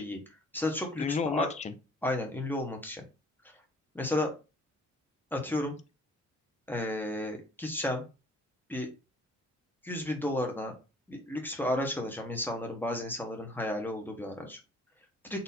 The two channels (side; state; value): both; normal; correlation 0.57